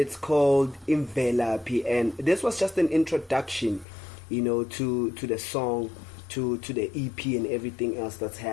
called Imvelaphi. And this was just an introduction, to the song, to the EP and everything else that's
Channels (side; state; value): right; drops out; at 3.9 s